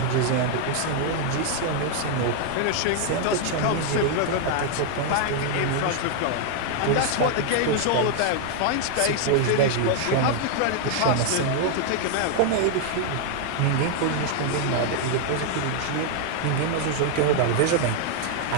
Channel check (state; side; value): different; both; correlation 0.00